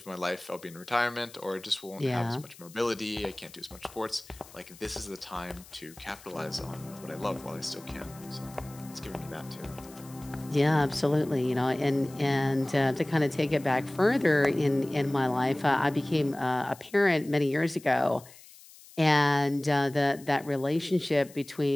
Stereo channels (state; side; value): noise; left; hiss, 21 dB below the sound